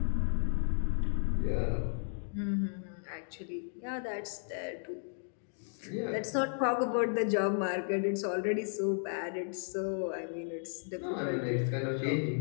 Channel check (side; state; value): right; silent; digital silence